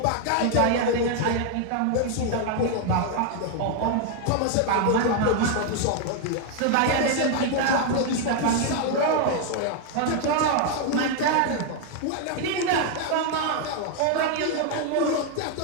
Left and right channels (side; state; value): both; different; correlation 0.00